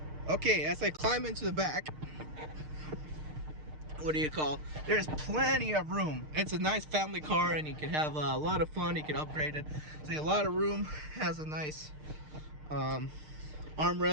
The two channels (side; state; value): left; late; 6.6 ms